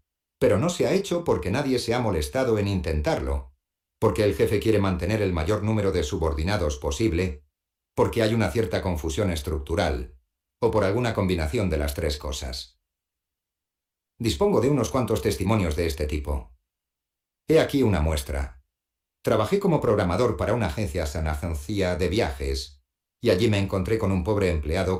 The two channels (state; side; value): identical; both; correlation 1.00